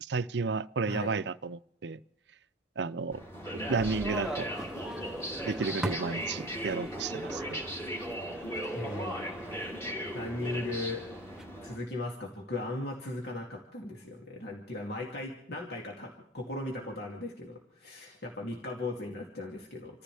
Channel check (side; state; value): both; normal; correlation 0.35